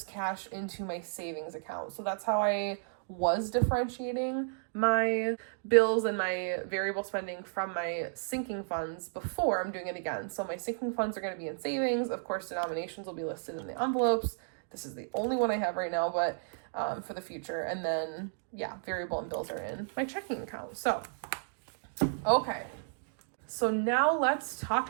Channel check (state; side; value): silent; left; digital silence